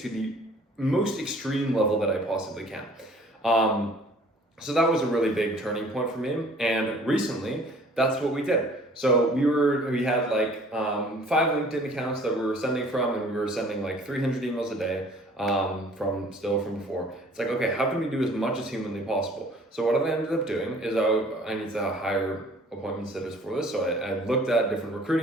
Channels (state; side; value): normal; both; correlation 0.53